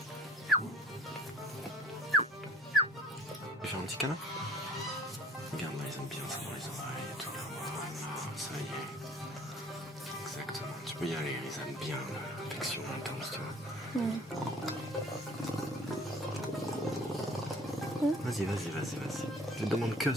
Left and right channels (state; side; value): normal; both; correlation 0.50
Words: Tu veux faire un petit câlin? Regarde, là, ils aiment bien ça dans les oreilles et tout. Là, voilà, ça y est. Exactement. Tu peux y aller, ils aiment bien l'affection intense, tu vois. Vas-y. Je te demande que